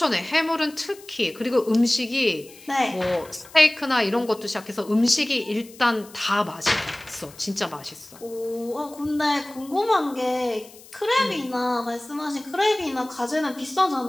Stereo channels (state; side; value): noise; left; hiss, 21 dB below the sound